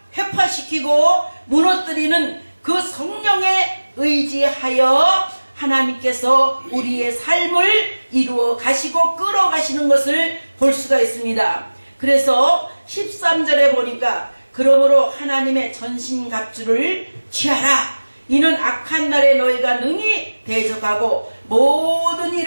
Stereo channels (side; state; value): both; inverted; correlation -1.00